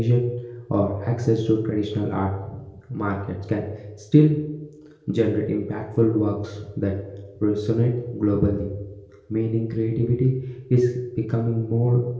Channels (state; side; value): identical; both; correlation 1.00